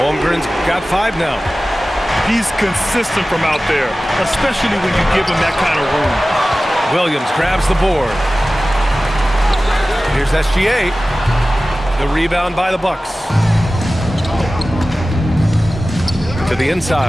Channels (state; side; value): normal; both; correlation 0.96